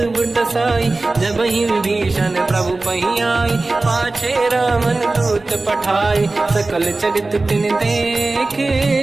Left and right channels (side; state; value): left; quieter; 3.3 dB